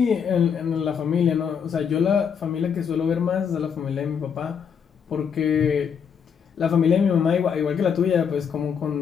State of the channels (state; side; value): quieter; right; 7.2 dB